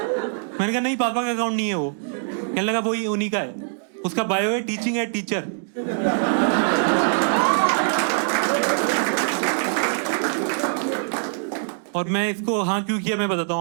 मैंने कहा नहीं, पापा का अकाउंट नहीं है वो। कहने लगा वही उन्हीं का है, उसका बायो है टीचिंग एट टीचर। और मैं इसको हाँ क्यों किया मैं बताता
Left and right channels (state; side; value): silent; left; digital silence